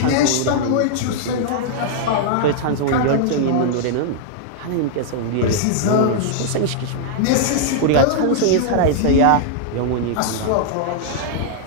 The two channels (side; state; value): both; different; correlation -0.01